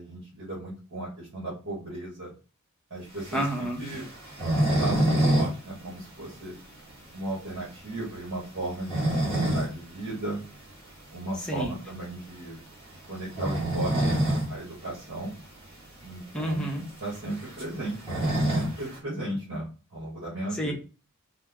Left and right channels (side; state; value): both; normal; correlation 0.68